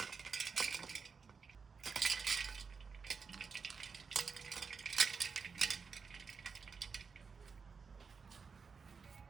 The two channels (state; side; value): quieter; left; 5.4 dB